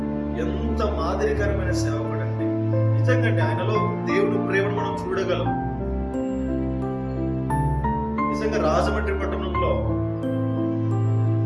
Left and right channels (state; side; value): identical; both; correlation 1.00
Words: ఎంత మాదిరికరమైన సేవకుడు అండి. నిజంగా ఆయనలో దేవుని ప్రేమను మనం చూడగలం. నిజంగా రాజమండ్రి పట్టణంలో